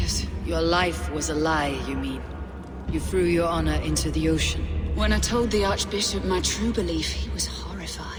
Your life was a lie, you mean? You threw your honor into the ocean. When I told the Archbishop my true belief, he was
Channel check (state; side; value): identical; both; correlation 1.00